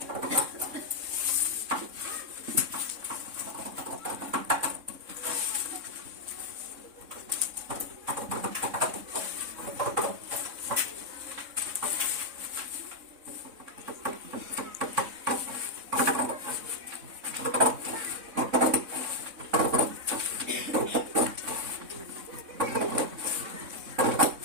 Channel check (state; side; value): late; left; 3.6 ms